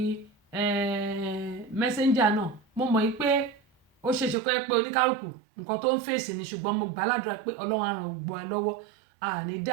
Messenger náà, mo mọ̀ yí pé ó ṣe ṣe pé oníkálùkù nǹkan tó ń fèsì ni, ṣùgbọ́n mo gbà ládùúrà pé Ọlọ́run á ràn gbogbo wa lọ́wọ́. Àní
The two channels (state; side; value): drops out; left; at 4.4 s